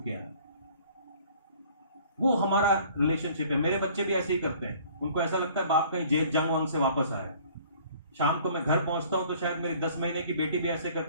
के आए। वो हमारा रिलेशनशिप है। मेरे बच्चे भी ऐसे ही करते हैं, उनको ऐसा लगता है बाप कहीं जेल जंग वंग से वापस आया। शाम को मैं घर पहुंचता हूं तो शायद मेरी 10 महीने की बेटी भी ऐसे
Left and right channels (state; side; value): inverted; both; correlation -0.53